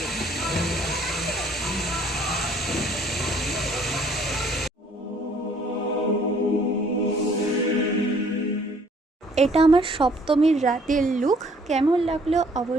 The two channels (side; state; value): both; normal; correlation 0.60